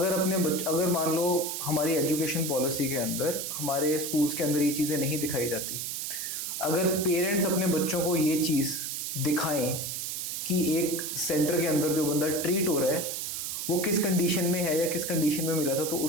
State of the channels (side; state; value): right; noise; hiss, 4 dB below the sound